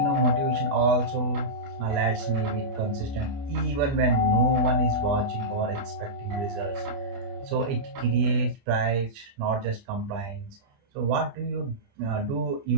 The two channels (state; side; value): late; left; 29 ms